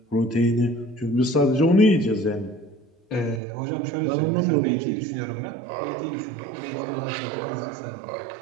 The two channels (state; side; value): drops out; left; at 3.4 s